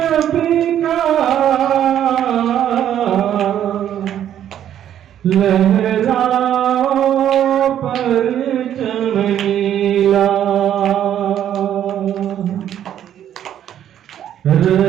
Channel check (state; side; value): quieter; left; 10.5 dB